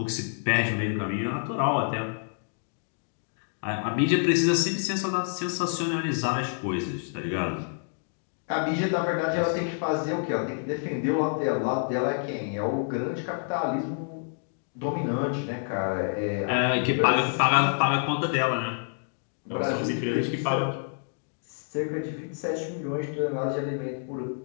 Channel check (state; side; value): silent; right; digital silence